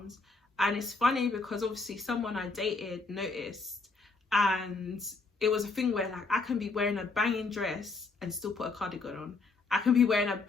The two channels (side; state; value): right; quieter; 4.0 dB